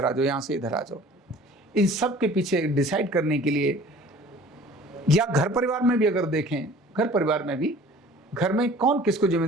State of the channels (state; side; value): normal; both; correlation 0.48